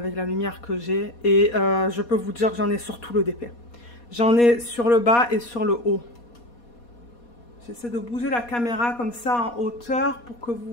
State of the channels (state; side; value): late; right; 4.2 ms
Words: la lumière que j'ai. Et je peux vous dire que j'en ai sur tout le DP. J'en ai sur le bas et sur le haut. J'essaie de bouger la caméra comme ça en hauteur pour que